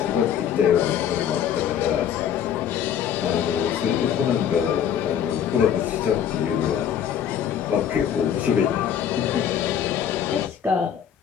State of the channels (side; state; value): right; quieter; 9.0 dB